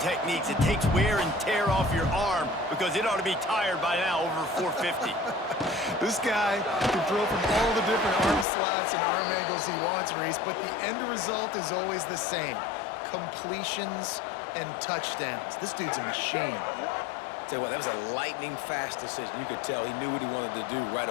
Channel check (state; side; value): drops out; right; at 8.5 s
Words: It takes wear and tear off your arm because it ought to be tired by now over 450. This guy can throw from all the different arm slots and arm angles he wants, Reese, but the end result is always the same. Completions and touchdowns. This dude's a machine. Tell you what, that was a lightning-fast decision. You could tell he knew what he wanted to do right